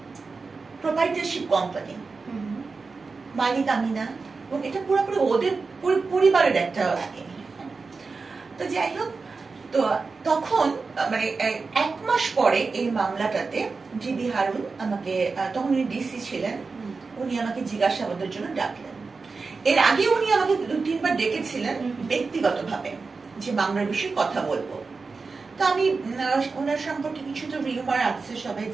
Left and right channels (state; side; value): quieter; left; 4.3 dB